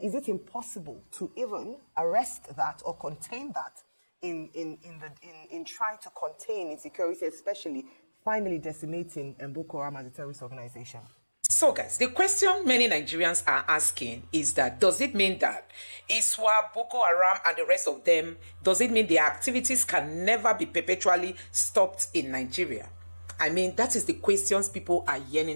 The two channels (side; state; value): both; inverted; correlation -1.00